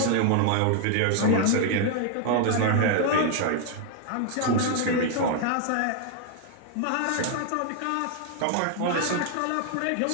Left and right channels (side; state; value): both; different; correlation 0.00